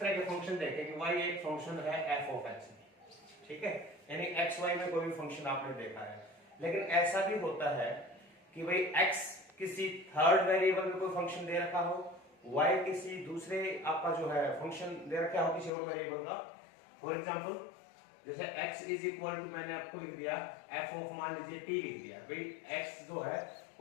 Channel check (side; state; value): right; drops out; at 15.7 s